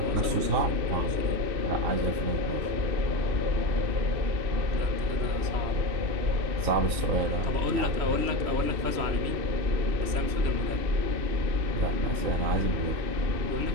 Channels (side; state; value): left; late; 3.1 ms